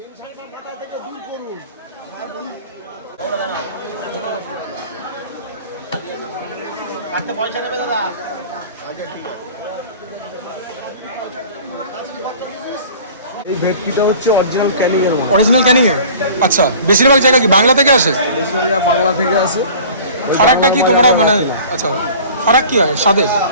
কাটতে পয়সা নেবে দাদা? এই ভেটকিটা হচ্ছে অরিজিনাল ক্যানিং এর মাল। অরিজিনাল ক্যানিং এর? আচ্ছা, বেশিরভাগ জায়গা কি বাংলা থেকে আসে? বেশিরভাগ বাংলা থেকে আসে। ফারাকটা কি তোমরা মানে, আচ্ছা ফারাক কি হয় স্বাদে?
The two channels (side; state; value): both; inverted; correlation -0.45